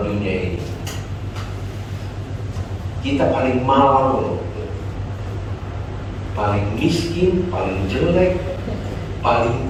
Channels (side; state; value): both; identical; correlation 1.00